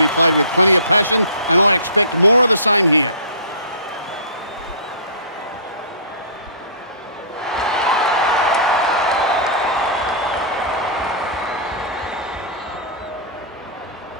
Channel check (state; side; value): inverted; both; correlation -0.38